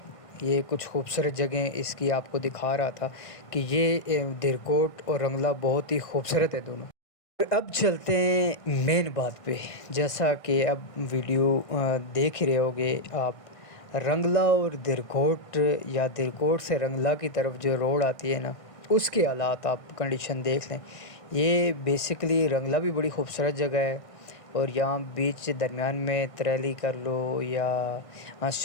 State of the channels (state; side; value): late; right; 1.5 ms